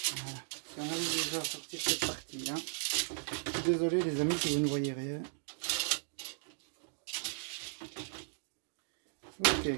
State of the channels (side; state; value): left; silent; digital silence